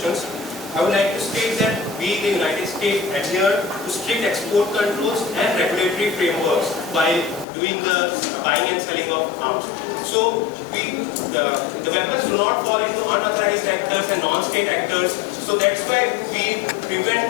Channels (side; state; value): right; drops out; at 7.5 s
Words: I would like to state that we in the United States adhere to strict export controls and regulatory frameworks while doing the buying and selling of arms. So the weapons do not fall into unauthorized actors and non-state actors. So that's why we